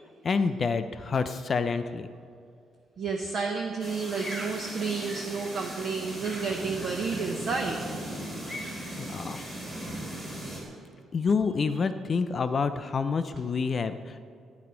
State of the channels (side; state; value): both; normal; correlation 0.78